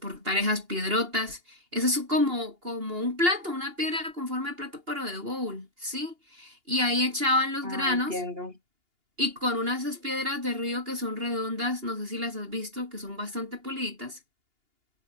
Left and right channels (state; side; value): late; left; 2.8 ms